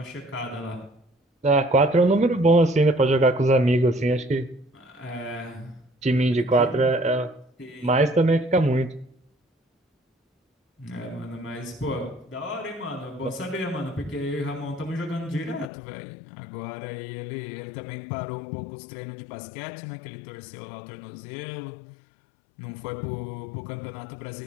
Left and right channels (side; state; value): right; drops out; at 15.7 s